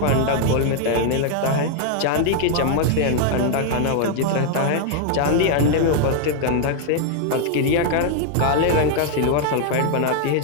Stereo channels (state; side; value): different; both; correlation 0.00